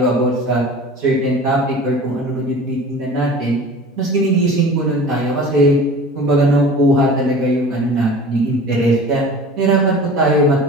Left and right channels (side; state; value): both; normal; correlation 0.40